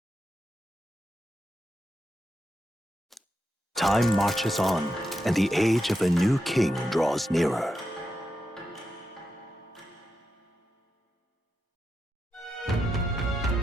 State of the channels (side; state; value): both; normal; correlation 0.87